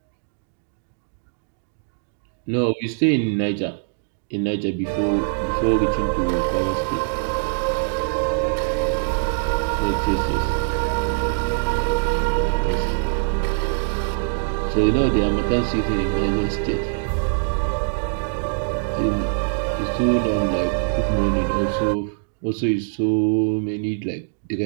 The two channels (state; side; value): silent; left; digital silence